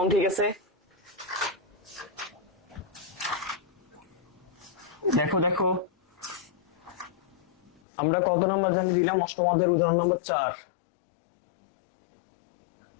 ঠিক আছে? দেখো দেখো, আমরা কত নাম্বার জানি দিলাম? অষ্টম অধ্যায়ের উদাহরণ নম্বর 4।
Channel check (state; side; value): drops out; right; at 7.8 s